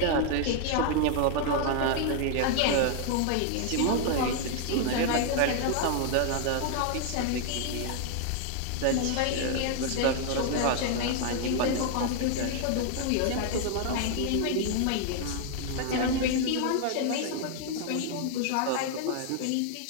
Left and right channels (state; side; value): different; both; correlation 0.00